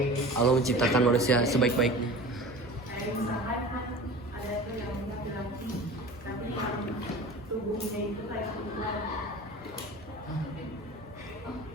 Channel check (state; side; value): normal; both; correlation 0.37